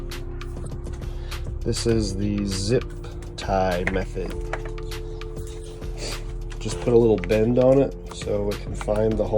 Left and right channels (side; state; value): both; identical; correlation 1.00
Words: This is the zip tie method. Just put a little bend on it so it can find the